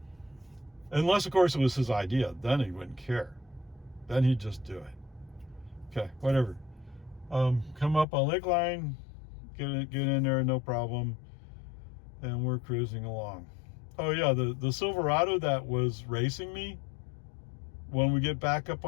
Unless, of course, it was his idea. Then he wouldn't care. Then he'd just do it. Okay, whatever. Come up on Lakeline, get in there, no problem. And we're cruising along. Oh yeah, the Silverado that was racing me, when we get back up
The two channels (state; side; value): drops out; right; at 8.1 s